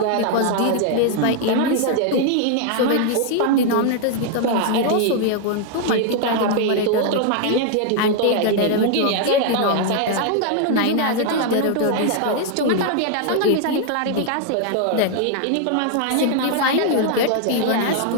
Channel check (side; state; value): both; different; correlation 0.00